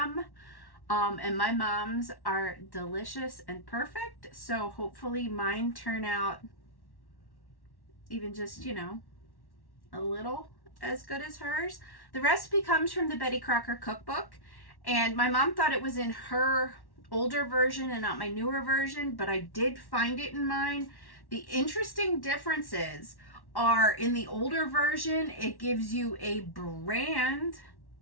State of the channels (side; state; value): right; late; 1.1 ms